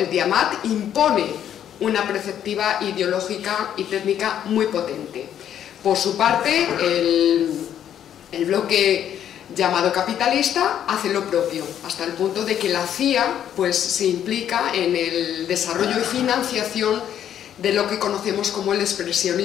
Diamat impone una perspectiva ideológica y técnica muy potente. Por su parte, el bloque llamado capitalista hace lo propio, hasta el punto de que la CIA pues, se implica en el desarrollo y financiación de lo que conocemos como el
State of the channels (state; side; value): quieter; right; 10.0 dB